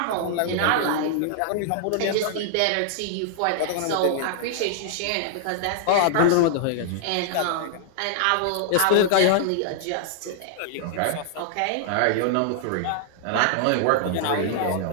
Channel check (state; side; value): different; both; correlation -0.01